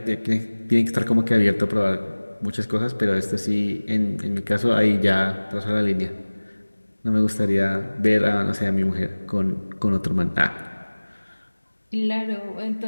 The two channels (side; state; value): both; inverted; correlation -1.00